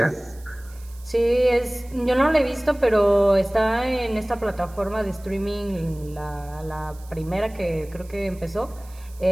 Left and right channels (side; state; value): right; noise; hiss, 24 dB below the sound